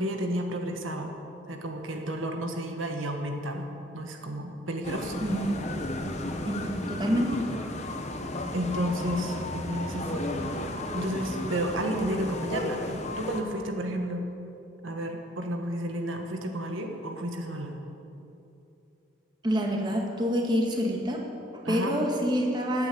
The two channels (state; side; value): normal; both; correlation 0.60